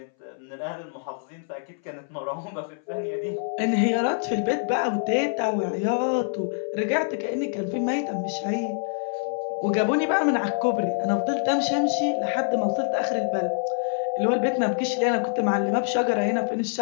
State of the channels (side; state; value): right; silent; 59 dB below the other